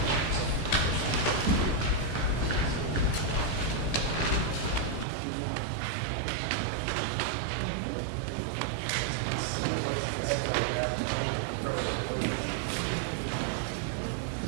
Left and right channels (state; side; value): drops out; left; at 5.1 s